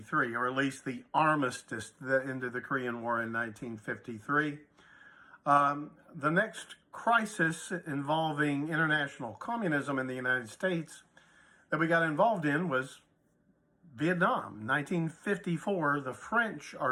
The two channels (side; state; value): both; identical; correlation 1.00